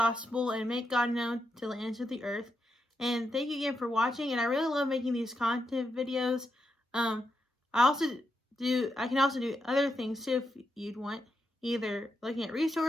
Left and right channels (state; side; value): normal; both; correlation 0.84